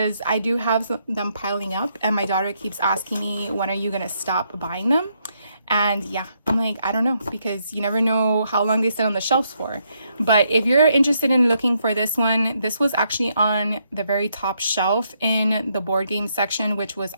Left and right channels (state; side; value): inverted; both; correlation -0.75